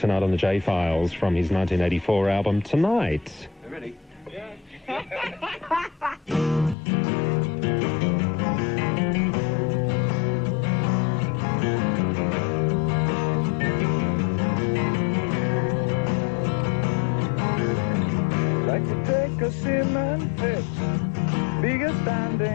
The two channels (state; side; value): drops out; right; at 6.8 s